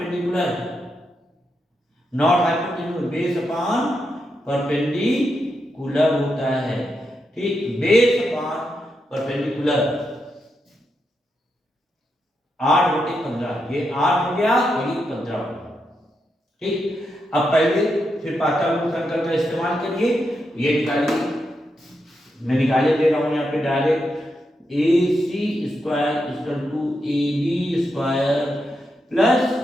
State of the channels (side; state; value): both; normal; correlation 0.84